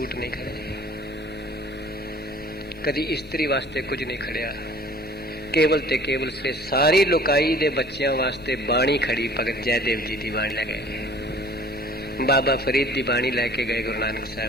ਨਹੀਂ ਖੜੇ, ਕਦੀ ਇਸਤਰੀ ਵਾਸਤੇ ਕੁਝ ਨਹੀਂ ਖੜਿਆ। ਕੇਵਲ ਤੇ ਕੇਵਲ ਸੇ ਸਾਰੀ ਲੋਕਾਈ ਦੇ ਬੱਚਿਆਂ ਵਾਸਤੇ ਬਾਣੀ ਖੜੀ। ਭਗਤ ਜੈਦੇਵ ਜੀ ਦੀ ਬਾਣੀ ਲੈ ਗਏ, ਬਾਬਾ ਫਰੀਦ ਦੀ ਬਾਣੀ ਲੈ ਕੇ ਗਏ ਗੁਰੂ ਨਾਨਕ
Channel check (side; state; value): both; normal; correlation 0.50